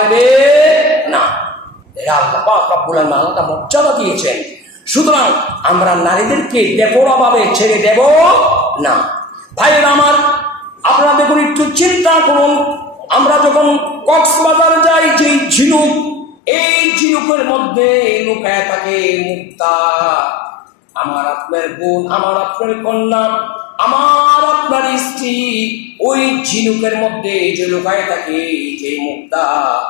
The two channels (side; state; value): right; drops out; at 16.4 s